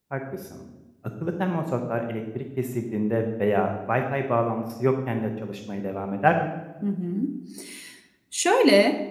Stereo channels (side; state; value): both; identical; correlation 1.00